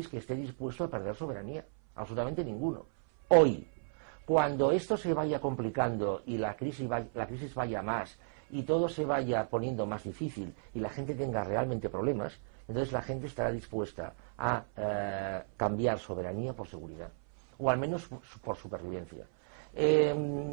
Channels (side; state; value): left; silent; 55 dB below the other